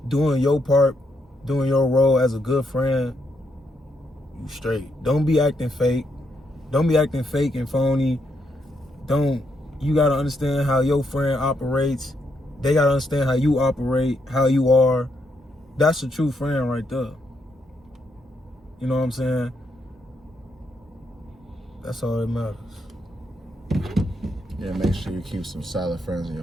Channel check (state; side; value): normal; both; correlation 0.78